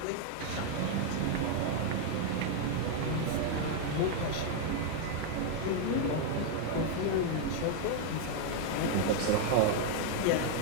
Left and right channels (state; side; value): different; both; correlation 0.00